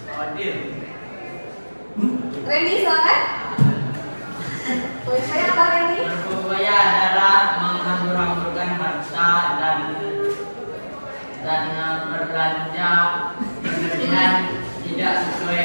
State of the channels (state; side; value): inverted; both; correlation -1.00